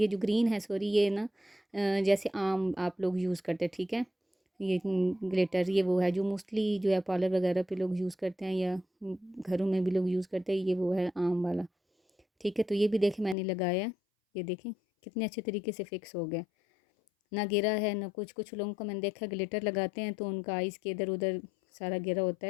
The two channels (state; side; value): drops out; right; at 13.4 s